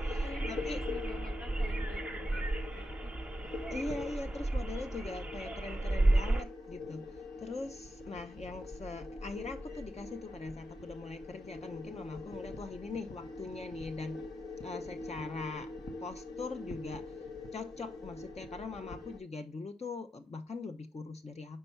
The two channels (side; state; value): both; normal; correlation 0.87